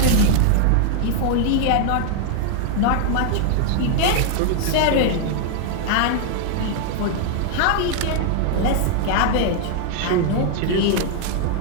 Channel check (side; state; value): both; different; correlation 0.00